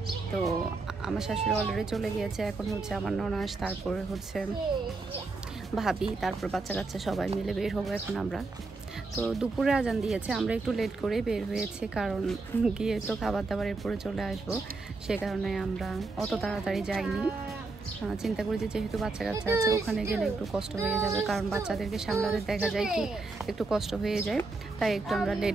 তো আমার শাশুড়ি অলরেডি চলে গিয়েছে, এখন হচ্ছে আমার ননাস, তারপরে হচ্ছে ভাবি, তারপর বাচ্চা কাচ্চা সবাই মিলে বের হবো এখন আমরা। তো দুপুরে আজান দিয়েছে, আমরা একটু লেট করে বের হয়েছি, কারণ গিয়ে তো খাবার দাবারের পরে চলে আসবো, সে কারণে আমরা অত তাড়াতাড়ি যাইনি। চিন্তা করি যে যেহেতু বাচ্চা কাচ্চা আছে ওখানে গেলে একটু কষ্ট হয়ে যাবে, কারণ বাচ্চাদেরকে সামলাতে দেখা যায় কি একটু কষ্ট হয়ে যায়, তাই একটু আমরা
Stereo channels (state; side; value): quieter; left; 3.6 dB